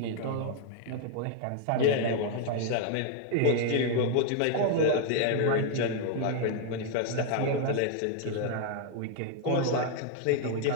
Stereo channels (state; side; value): different; both; correlation 0.00